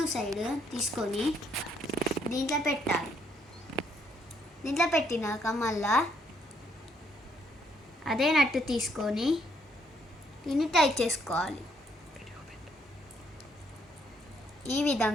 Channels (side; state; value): both; normal; correlation 0.71